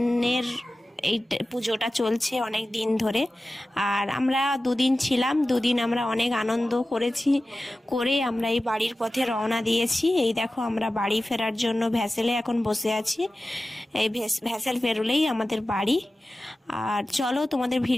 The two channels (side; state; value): both; normal; correlation 0.95